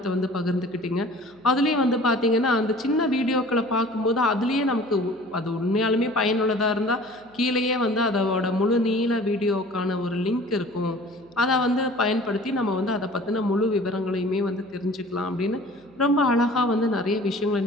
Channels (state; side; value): noise; right; hum, 28 dB below the sound